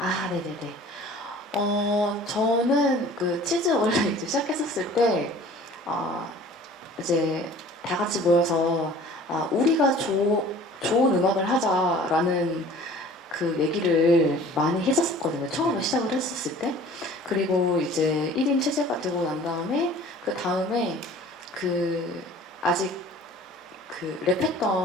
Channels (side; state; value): both; normal; correlation 0.47